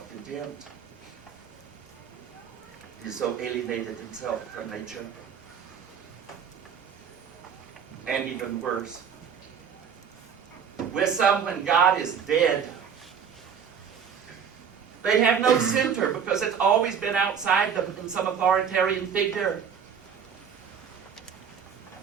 He's so alienated himself from nature. And even worse, with some, when God is dead, they have no center because it's always been outside them in some authoritarian figure.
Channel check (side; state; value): left; quieter; 7.4 dB